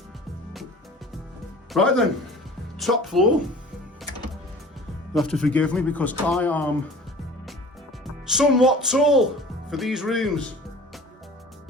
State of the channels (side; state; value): both; normal; correlation 0.43